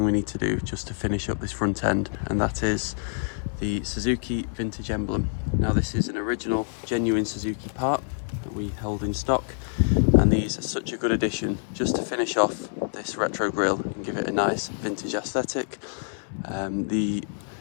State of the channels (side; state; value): right; silent; 61 dB below the other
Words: we need to do just to finish up this front end, and that is the Suzuki Vintage Emblem. Now this is an original, genuine Suzuki part that we hold in stock, and these are such a good addition just to finish off this Retro Grille and give it a nice vintage aesthetic. The